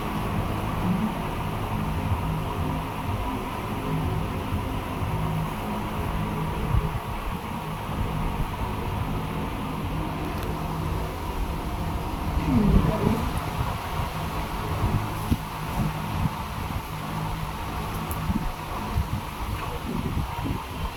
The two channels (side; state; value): both; identical; correlation 1.00